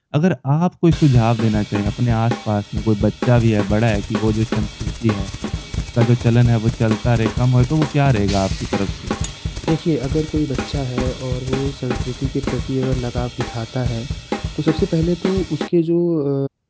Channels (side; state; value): both; identical; correlation 1.00